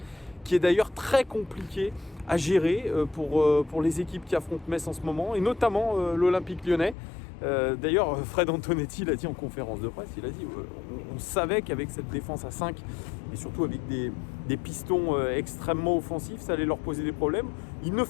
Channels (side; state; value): right; drops out; at 7.0 s